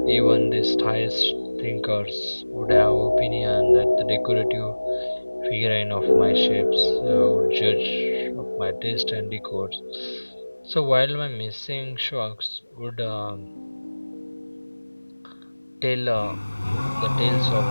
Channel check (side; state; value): both; inverted; correlation -1.00